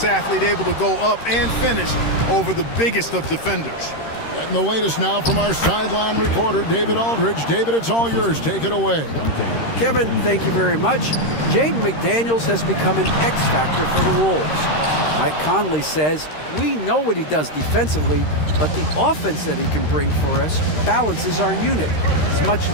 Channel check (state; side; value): late; right; 13 ms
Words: athlete, able to go up and finish over the biggest of defenders. Getting the latest now from our sideline reporter, David Aldridge. David, it's all yours. Take it away. Kevin, thank you very much. Jaden McDaniels has become an X factor for the Wolves. Mike Conley says, we know what he does defensively, but the offense that he can bring for us balances our unit. It's much